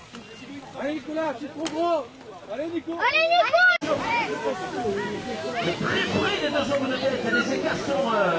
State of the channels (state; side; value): identical; both; correlation 1.00